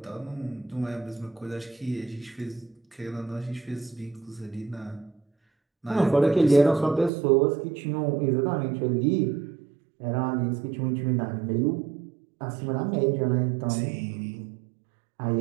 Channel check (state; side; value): drops out; left; at 7.1 s